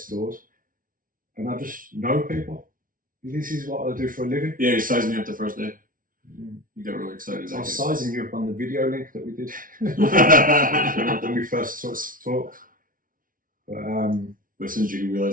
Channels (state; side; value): late; left; 0.40 ms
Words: doors, and I just know people. This is what I do for a living. Yeah, you sized me up the first day. You got really excited. I was sizing you up on the video link that we did when we first talked. But as soon as you